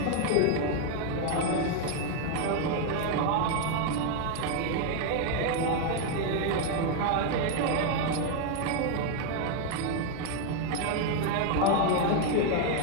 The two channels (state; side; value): different; both; correlation 0.00